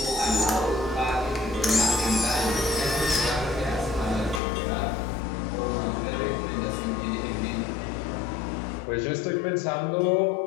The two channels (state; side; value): drops out; right; at 4.4 s